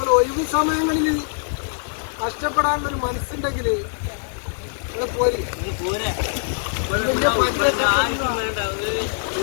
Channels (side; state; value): right; silent; digital silence